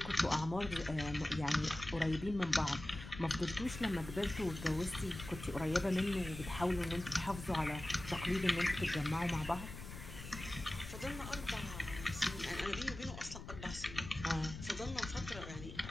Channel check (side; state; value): left; noise; rumble, 11 dB below the sound